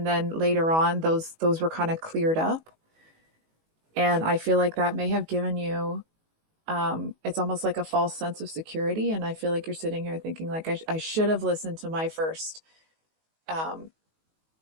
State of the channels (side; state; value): left; late; 19 ms